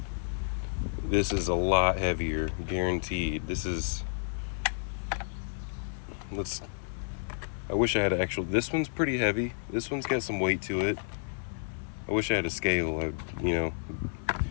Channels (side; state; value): right; silent; 57 dB below the other